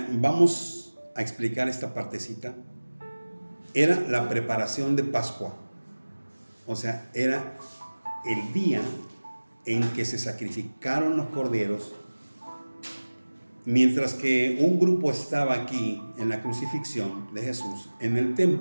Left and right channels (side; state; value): both; inverted; correlation -1.00